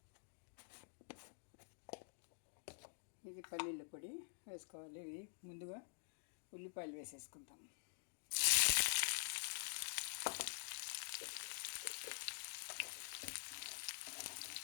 ఇది పల్లీల పొడి వేసుకోవాలి. ఇది ముందుగా ఉల్లిపాయలు వేసేసుకుంటాం.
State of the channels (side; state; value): right; silent; digital silence